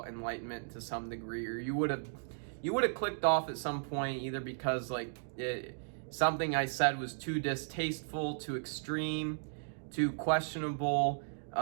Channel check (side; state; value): left; silent; digital silence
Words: enlightenment to some degree, or you would have clicked off at some point, either because something I said was too distasteful, too extreme, too questionable,